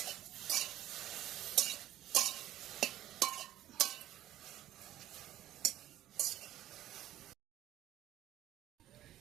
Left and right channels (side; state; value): left; quieter; 13.3 dB